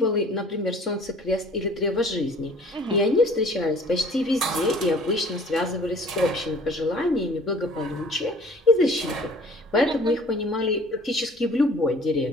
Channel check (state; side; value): normal; both; correlation 0.51